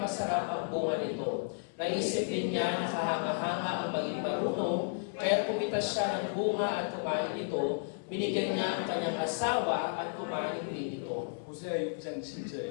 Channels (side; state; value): right; silent; 56 dB below the other